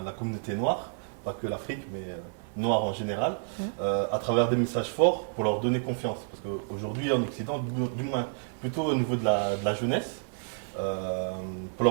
la communauté noire, pas que l'Afrique, mais noire en général, à travers des messages forts pour leur donner confiance. Parce qu'aujourd'hui, en Occident, du moins plutôt au niveau de la jeunesse, pour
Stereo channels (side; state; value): left; silent; digital silence